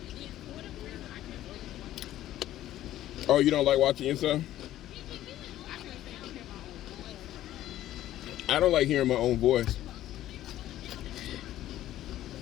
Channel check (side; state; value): right; quieter; 13.5 dB